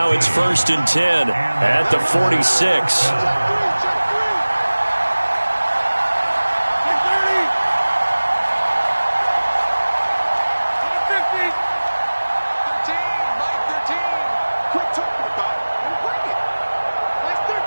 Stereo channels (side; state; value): both; inverted; correlation -1.00